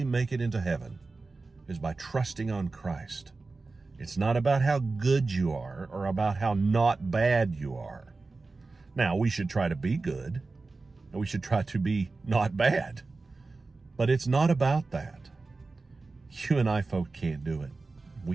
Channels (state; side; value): quieter; left; 3.7 dB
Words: make it into heaven is by trusting on Christ. It's not about how good you are or about how not bad you are. Now, we should try to be good, and we should try to be not bad. But it's not about that. You and I folk can't do it.